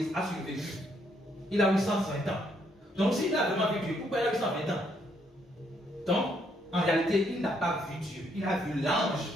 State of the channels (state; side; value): normal; both; correlation 0.72